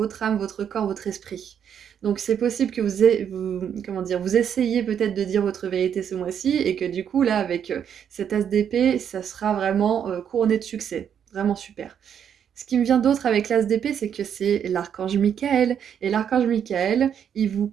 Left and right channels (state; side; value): quieter; left; 8.5 dB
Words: âme, votre corps, votre esprit. Donc c'est possible que comment dire, vous essayiez peut-être de dire votre vérité ce mois-ci et que du coup là avec cet as d'épée, ça sera vraiment couronné de succès. Vraiment super. Ce qui me vient d'autre avec l'as d'épée, c'est que c'est l'archange Michael. Et l'archange Michael, il vous